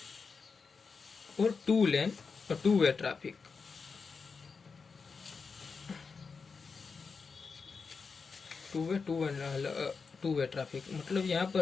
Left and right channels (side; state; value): right; quieter; 5.0 dB